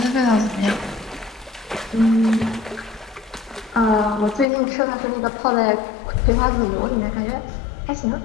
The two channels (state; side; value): drops out; right; at 4.5 s